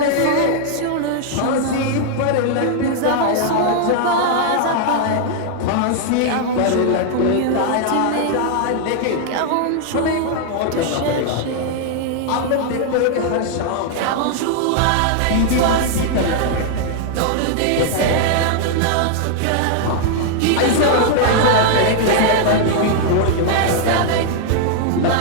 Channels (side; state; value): both; different; correlation 0.00